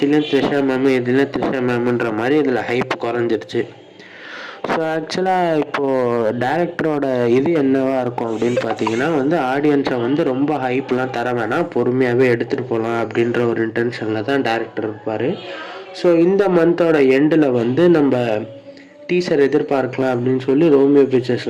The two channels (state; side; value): identical; both; correlation 1.00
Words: த்ரிஷா மேமு இதுலேயும் த்ரிஷா மேமுன்ற மாதிரி இதில் ஹைப் குறைஞ்சிருச்சு. ஸோ ஆக்சுவலாக இப்போது டேரக்டரோட இது என்னவா இருக்கும் அப்படின்னு பார்த்தீங்கன்னா வந்து, ஆடியன்ஸை வந்து ரொம்ப ஹைப்லாம் தர வேணாம், பொறுமையாகவே எடுத்துகிட்டு போகலாம் அப்படின்ற ஒரு இன்டென்ஷனில் தான் டேரக்டர் இருப்பார். ஸோ இந்த மந்தோட எண்டில் வந்து நம்ம டீசர் எதிர்பார்க்கலாம் அப்படின்னு சொல்லி ரோமியோ பிக்சர்ஸ்